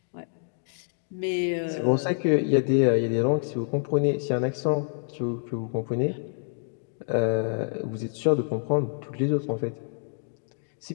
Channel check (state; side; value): silent; right; 60 dB below the other